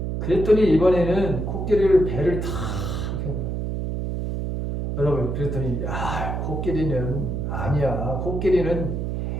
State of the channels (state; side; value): noise; right; hum, 2 dB below the sound